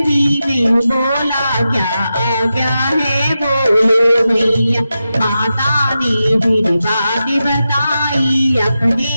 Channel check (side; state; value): both; inverted; correlation -0.90